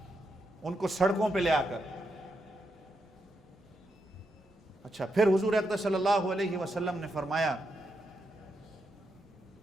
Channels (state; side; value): normal; both; correlation 0.83